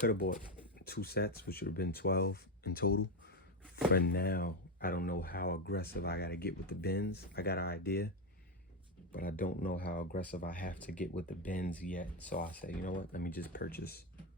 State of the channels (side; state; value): both; normal; correlation 0.09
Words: have bought 2 sets, which would have been 12 in total. For now, I don't know how aggressive I gotta get with the bends. I got an idea, but I don't know how aggressive I have to get with the bends yet. So I say, you know what? Let me just purchase